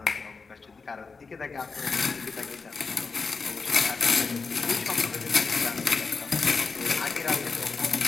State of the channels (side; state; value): right; quieter; 4.6 dB